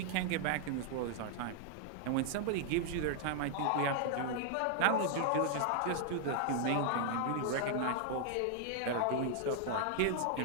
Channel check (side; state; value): both; different; correlation 0.00